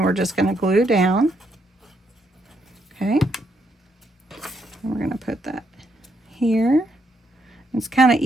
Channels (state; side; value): normal; both; correlation 0.76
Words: we're just going to glue down. Okay. And we're going to put that here. It's kind of